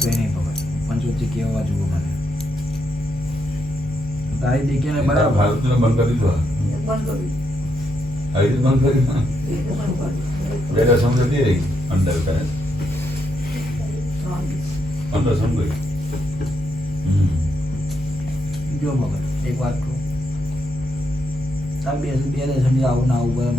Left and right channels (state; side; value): normal; both; correlation 0.79